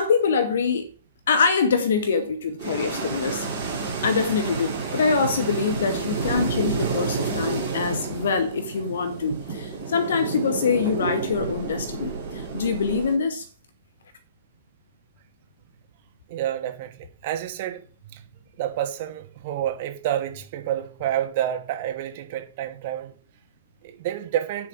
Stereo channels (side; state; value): both; inverted; correlation -0.52